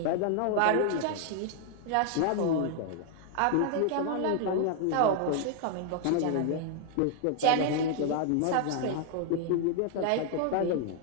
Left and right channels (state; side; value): different; both; correlation 0.00